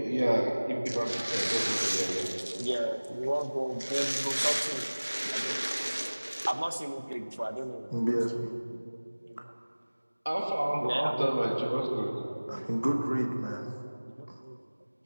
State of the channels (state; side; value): inverted; both; correlation -1.00